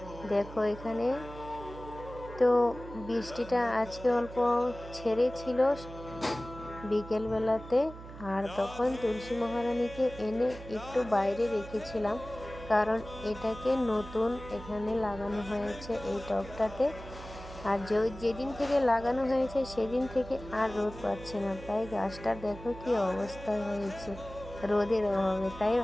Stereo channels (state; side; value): noise; right; hum, 14 dB below the sound